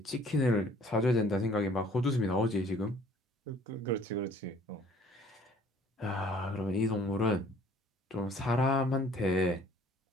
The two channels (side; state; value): both; normal; correlation 0.55